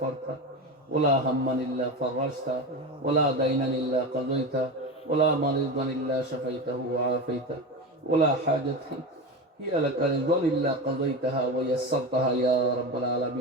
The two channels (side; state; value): both; normal; correlation 0.23